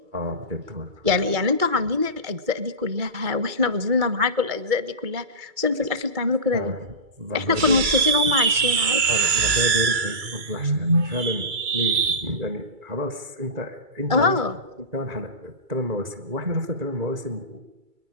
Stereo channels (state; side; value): late; left; 2.3 ms